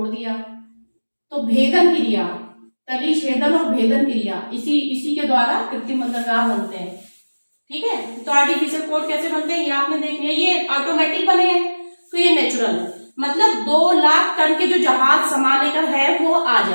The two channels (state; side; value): inverted; both; correlation -1.00